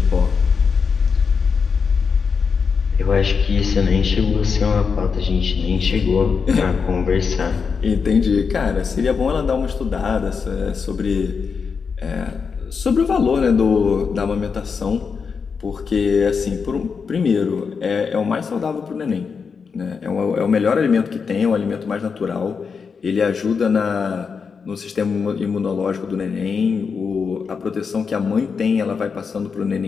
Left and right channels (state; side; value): quieter; right; 5.7 dB